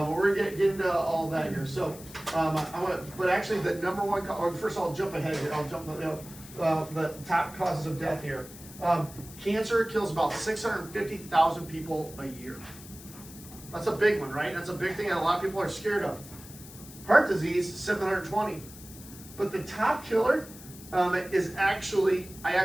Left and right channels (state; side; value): noise; left; hiss, 17 dB below the sound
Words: going to get into all that here. So, but actually the number one, first I'll jump ahead here. I'll jump the top causes of death here. Cancer kills about 650,000 people a year. That's a big one, right? That's a big thing that a lot of people are scared of. Heart disease, 720. But the top killer is actually